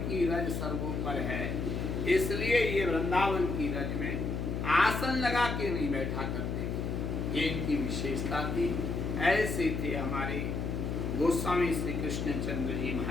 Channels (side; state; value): left; noise; hum, 2 dB below the sound